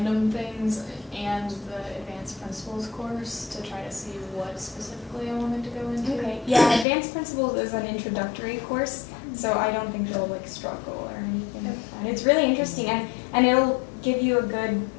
things and the advanced principles course to try to see what specifically I wanted to go into. Okay, yeah, advanced principles is an introductory course, so I don't think you'll like struggle or anything like that. It's really interesting, and it'll give you a good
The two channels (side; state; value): right; drops out; at 6.9 s